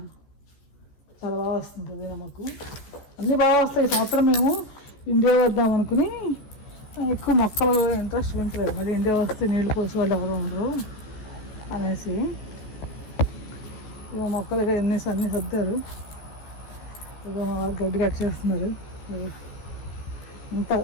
చాలా బాగా వస్తుంది. పుదీనా మాకు అన్నీ బాగా వస్తాయి. ఈ సంవత్సరం మేము ఇండియా వద్దాం అనుకుని ఎక్కువ మొక్కలు ఇంట్రెస్ట్ పెంచలేదు. మళ్ళీ ఇండియా వస్తే నీళ్ళు పోసి వాళ్ళు ఎవరు ఉండరు అనేసి ఇక మొక్కలుగా అన్నీ సర్దారు. ఇక గడ్డి కట్ చేస్తున్నారు. ఇంత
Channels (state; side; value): late; right; 14 ms